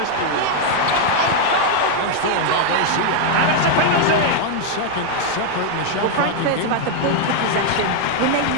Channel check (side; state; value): both; different; correlation 0.00